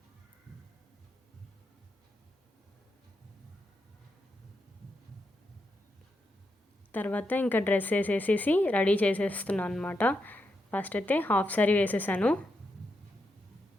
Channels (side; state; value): both; normal; correlation 0.84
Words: తర్వాత ఇంకా డ్రెస్ వేసేసి రెడీ చేసేస్తున్నాను అనమాట. ఫస్ట్ అయితే హాఫ్ సారీ వేసేసాను.